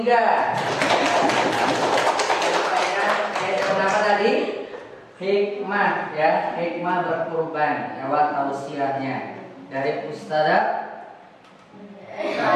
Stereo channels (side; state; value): both; identical; correlation 1.00